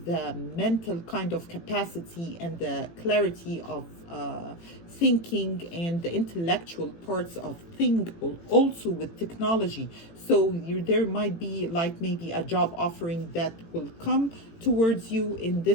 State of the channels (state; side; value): late; right; 18 ms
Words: the mental kind of capacity and the clarity of thinking and the intellectual parts of thing, also with technology. So there might be like maybe a job offering that will come towards you in